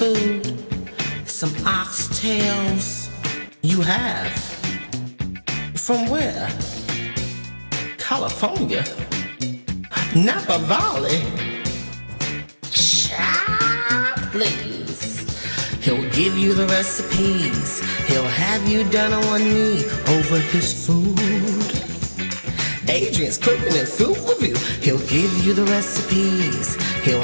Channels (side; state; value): both; inverted; correlation -1.00